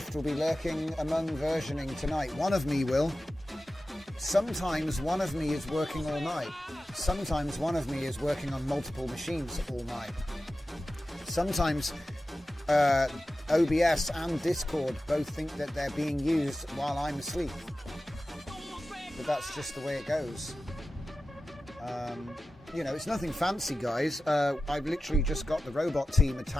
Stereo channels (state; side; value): normal; both; correlation 0.94